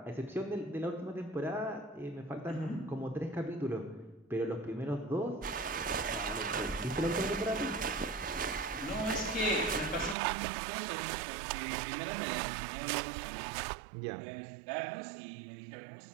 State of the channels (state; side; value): drops out; left; at 10.2 s